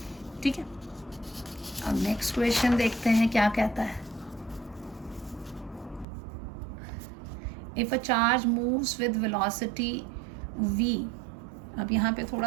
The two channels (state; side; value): drops out; left; at 6.1 s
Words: ठीक है। अब next question देखते हैं क्या कहता है। If a charge moves with velocity v अब यहाँ पे थोड़ा